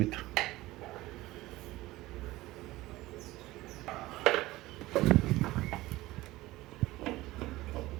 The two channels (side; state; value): left; quieter; 18.2 dB